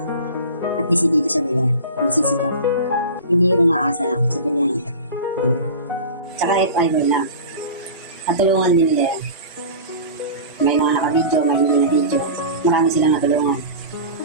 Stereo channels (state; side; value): inverted; both; correlation -0.33